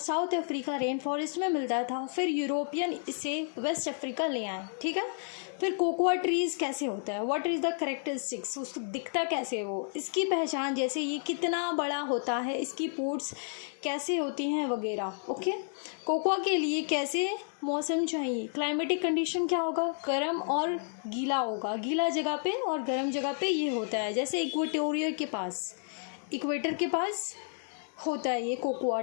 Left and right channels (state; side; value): silent; right; 57 dB below the other